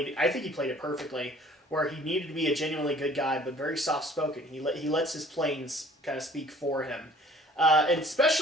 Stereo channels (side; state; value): both; normal; correlation 0.52